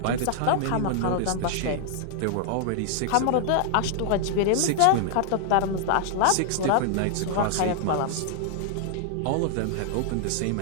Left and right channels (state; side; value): different; both; correlation 0.00